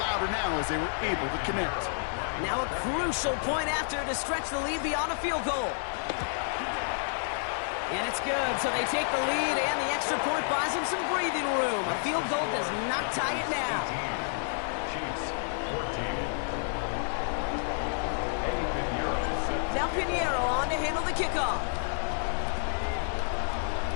now as they were able to connect. Now a crucial point after to stretch the lead beyond a field goal. it's good. So they take the lead, and the extra point buys them some breathing room. A field goal does not tie it now. Chiefs 14. Now Pinheiro on to handle the kickoff.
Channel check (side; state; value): right; silent; digital silence